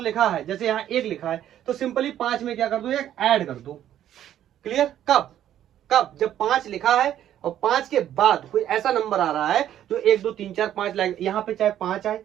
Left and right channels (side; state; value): left; quieter; 11.3 dB